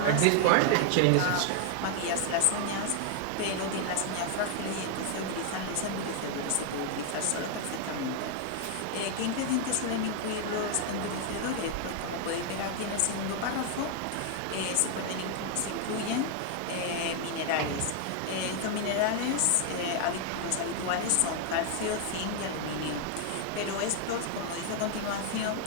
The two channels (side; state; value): both; different; correlation 0.00